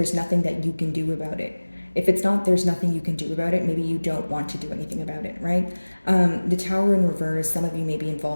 nothing that you can do about it. If it's not there's nothing you can do about it, maybe you don't want to do anything about it, right? The Tower in reverse, some of you may be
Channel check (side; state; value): both; inverted; correlation -1.00